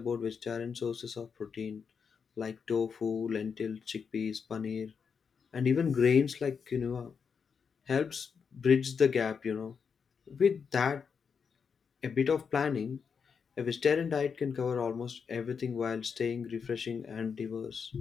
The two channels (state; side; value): quieter; right; 6.2 dB